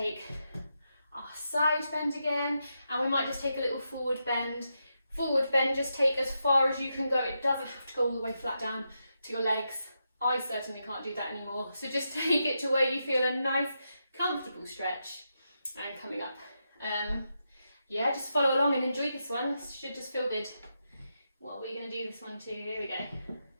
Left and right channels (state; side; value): inverted; both; correlation -0.85